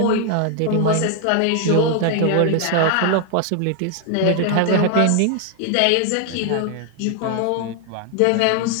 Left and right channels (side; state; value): both; different; correlation 0.00